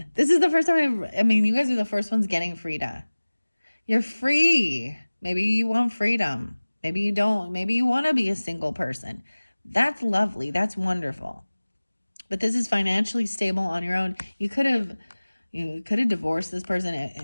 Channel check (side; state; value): both; inverted; correlation -1.00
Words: This is the first time I mean, you guys are the first ones getting Frida. You're free. Maybe you want freedom. Maybe you don't. Maybe you want to be a single person. That's lovely. That's wonderful. But this is financially stable on your own. You could have divorced this